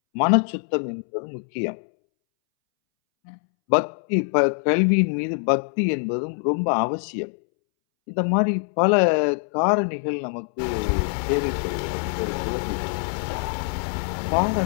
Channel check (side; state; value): right; silent; 63 dB below the other